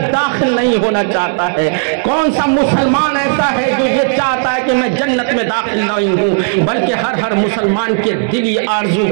داخل نہیں ہونا چاہتا ہے؟ کون سا مسلمان ایسا ہے جو یہ چاہتا ہے کہ میں جنت میں داخل نہیں ہوں؟ بلکہ ہر مسلمان کے دلی آرزو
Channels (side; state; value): left; silent; 58 dB below the other